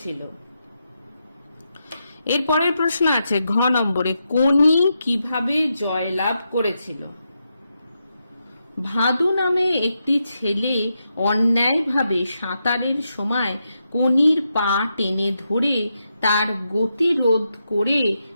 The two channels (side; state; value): both; inverted; correlation -0.85